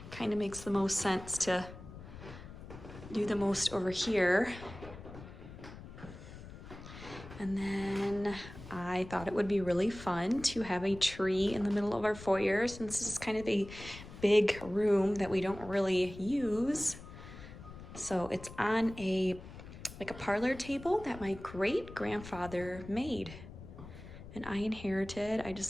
kind of makes the most sense to do the most over here. And then I thought it would be really fun to have a tree in the middle of our foyer, since this is kind of a big room that we don't really use. So it's on like a parlor table that my great grandfather made and I inherited. I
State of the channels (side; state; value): left; noise; rumble, 14 dB below the sound